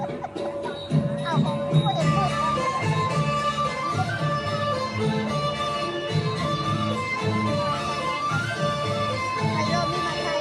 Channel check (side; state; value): both; identical; correlation 1.00